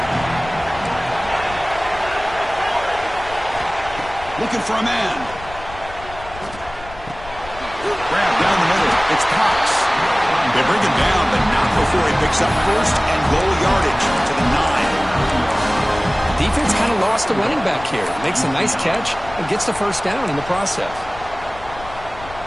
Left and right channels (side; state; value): left; noise; rumble, 16 dB below the sound